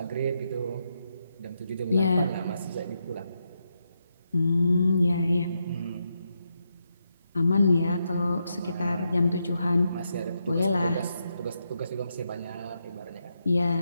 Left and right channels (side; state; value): both; inverted; correlation -0.83